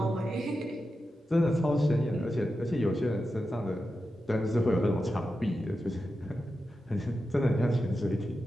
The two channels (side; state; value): both; normal; correlation 0.90